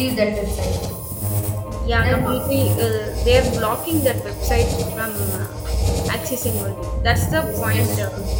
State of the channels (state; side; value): identical; both; correlation 1.00